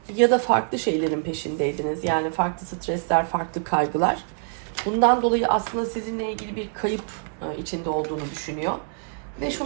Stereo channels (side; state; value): left; silent; 59 dB below the other